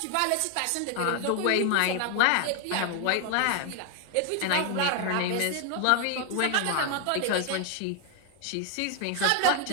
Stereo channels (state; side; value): different; both; correlation 0.00